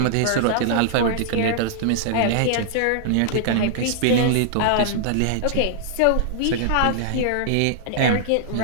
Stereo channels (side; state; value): both; different; correlation -0.01